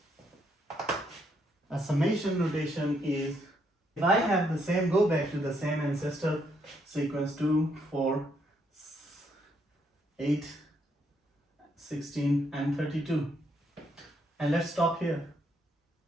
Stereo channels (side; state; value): both; normal; correlation 0.74